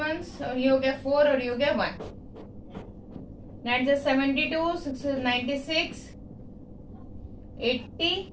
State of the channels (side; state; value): both; identical; correlation 1.00